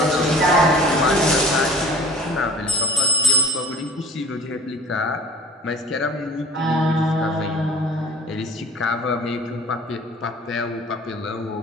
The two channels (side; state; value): both; normal; correlation 0.47